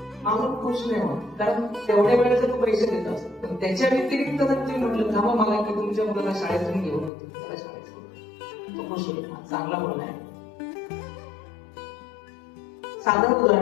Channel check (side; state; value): right; drops out; at 7.1 s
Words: माणूस खुश नाही होत, कारण तेवढ्या वेळेचे तो पैसे देत असतो. पण त्याच्या व्यतिरिक्त जर तुम्ही म्हटलं थांबा मला की तुमच्या मुलाला शाळेतून घेऊन होते, त्याला शाळेत तो खुश होईल. चांगला बोलला आहे. साधं